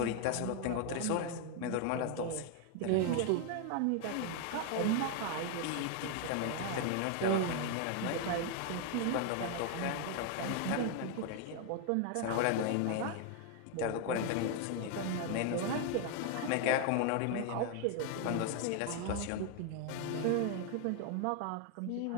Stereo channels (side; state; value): both; different; correlation 0.00